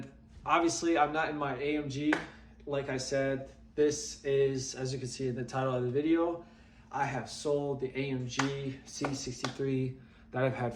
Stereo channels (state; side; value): identical; both; correlation 1.00